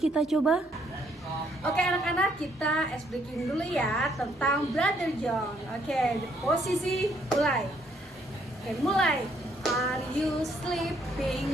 kita coba. Oke anak-anak, kita ice breaking dulu ya tentang Brother John. Oke, posisi mulai. Oke, mulai. Are you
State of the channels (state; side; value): normal; both; correlation 0.69